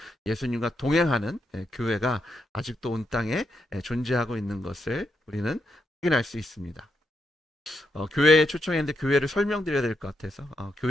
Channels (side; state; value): both; normal; correlation 0.82